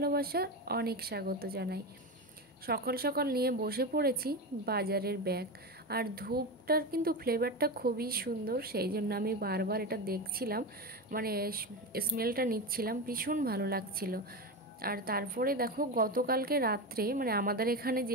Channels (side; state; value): both; normal; correlation 0.19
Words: অনেক স্বাগত জানাই। সকাল সকাল নিয়ে বসে পড়েছি বাজারের ব্যাগ, আর ধূপটার কিন্তু ফ্লেভারটা খুবই সুন্দর, সেই জন্য আমি বারবার এটা দেখছিলাম, মানে স্মেলটা নিচ্ছিলাম, ভীষণ ভালো লাগছিল। আর তারপরে দেখো গতকালকে রাত্রে, মানে আমাদের এখানে